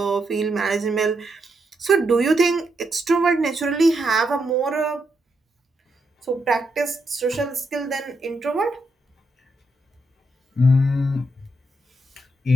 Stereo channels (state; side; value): normal; both; correlation 0.81